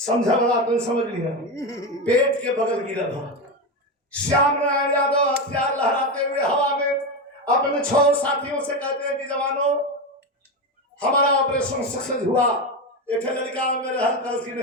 वाला अपन समझ लिया पेट के बगल गिरा था। श्याम नारायण यादव हथियार लहराते हुए हवा में अपने 6 साथियों से कहते हैं कि जवानों हमारा ऑपरेशन सक्सेस हुआ। एक लड़का मेरे हल्का की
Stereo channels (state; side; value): normal; both; correlation 0.15